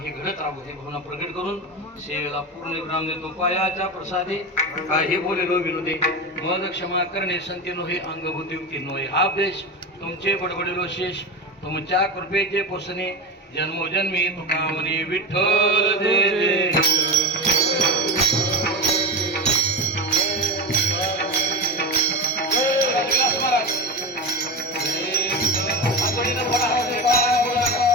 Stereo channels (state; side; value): normal; both; correlation 0.22